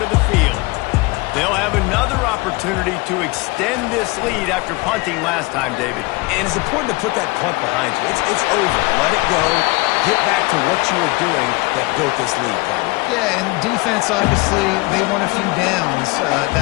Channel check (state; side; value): quieter; right; 24.1 dB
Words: the field. They'll have another opportunity to extend this lead after punting last time, David. And it's important to put that punt behind you. It's over. Let it go. Get back to what you were doing that built this lead, Palmer. Yeah, and defense, obviously, they won a few downs that